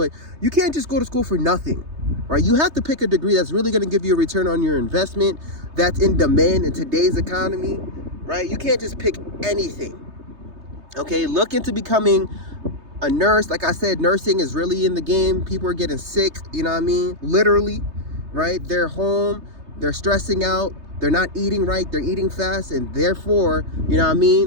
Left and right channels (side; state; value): left; late; 3.3 ms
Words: you can't just go to school for nothing. Right? You have to pick a degree that's really going to give you a return on your investment, that's in demand in today's economy, right? You can't just pick anything, okay? Look into becoming a nurse. Like I said, nursing is really in the game. People are getting sick, you know what I mean? Literally, right? They're home, they're stressing out, they're not eating right, they're eating fast, and therefore, you know what I